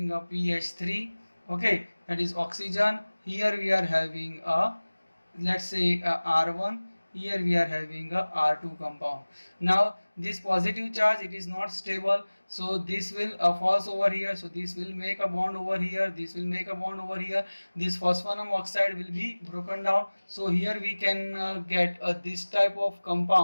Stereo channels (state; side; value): inverted; both; correlation -1.00